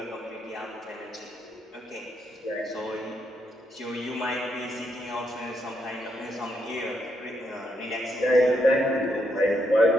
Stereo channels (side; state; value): both; normal; correlation 0.78